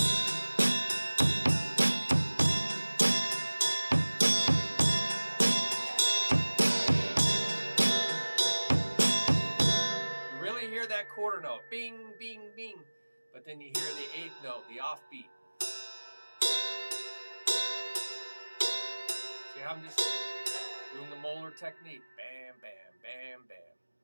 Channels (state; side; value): inverted; both; correlation -1.00